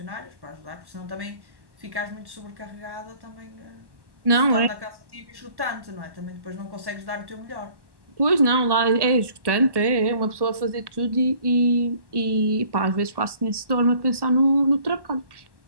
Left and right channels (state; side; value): late; left; 1.1 ms